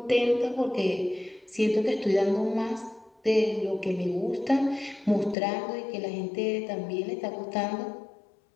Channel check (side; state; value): right; drops out; at 5.4 s